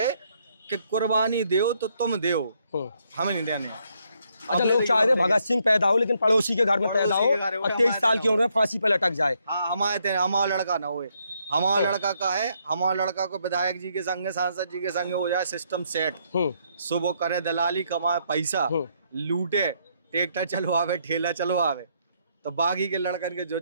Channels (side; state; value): both; inverted; correlation -0.73